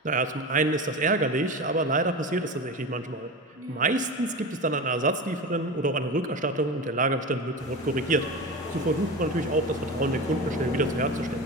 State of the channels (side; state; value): both; normal; correlation 0.27